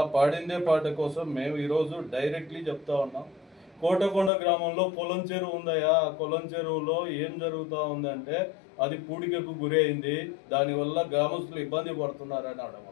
పాడిందే పాట కోసం మేము ఈరోజు డైరెక్ట్లీ చెప్తా ఉన్నాం. కోటకొండ గ్రామంలో కొలం చెరువు ఉందయా, ఆ కొలం చెరువులో ఏం జరుగుతూ ఉందంటే అది పూడికకు గురి అయింది, దానివల్ల గ్రామస్తులు ఇబ్బంది పడుతున్నారని అనడం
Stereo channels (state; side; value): drops out; right; at 4.3 s